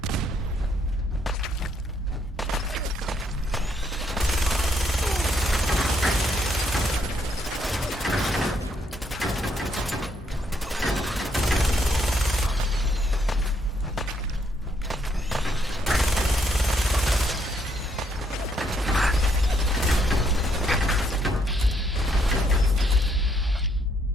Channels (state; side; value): normal; both; correlation 0.72